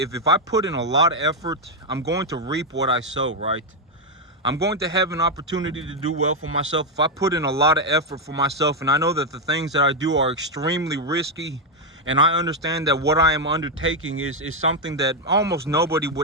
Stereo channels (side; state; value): both; normal; correlation 0.03